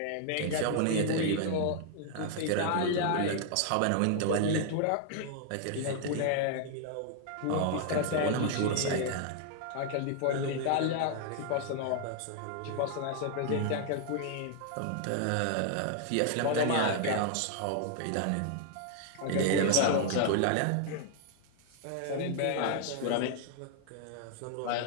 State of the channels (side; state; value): both; different; correlation 0.00